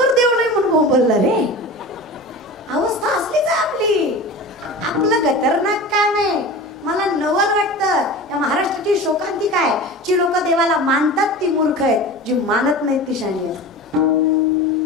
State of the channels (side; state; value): both; normal; correlation 0.33